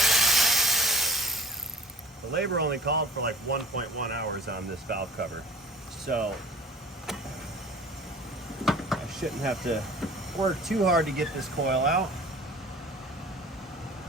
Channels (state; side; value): normal; both; correlation 0.43